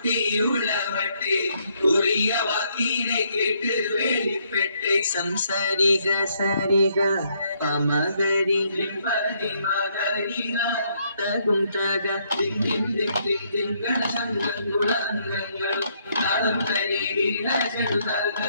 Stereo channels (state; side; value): inverted; both; correlation -0.71